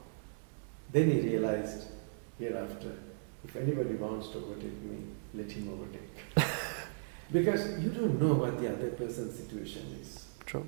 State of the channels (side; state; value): left; quieter; 39.6 dB